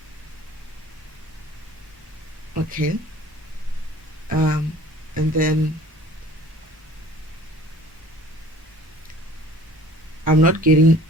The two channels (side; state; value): both; normal; correlation 0.49